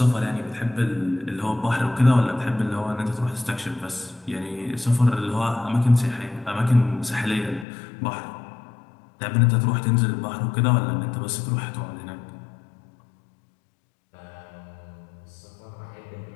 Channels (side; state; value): right; drops out; at 7.7 s